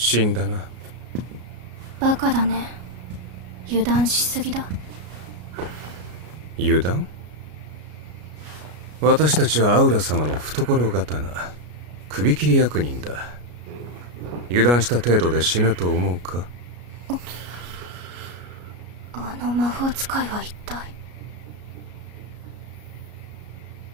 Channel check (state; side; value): late; left; 33 ms